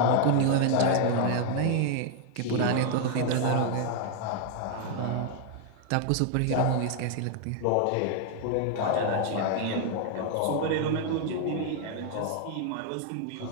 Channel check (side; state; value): both; different; correlation 0.00